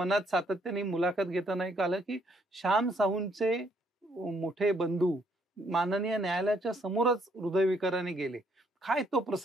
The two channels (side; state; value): both; normal; correlation 0.69